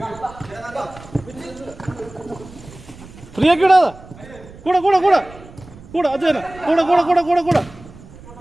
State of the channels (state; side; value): noise; right; rumble, 19 dB below the sound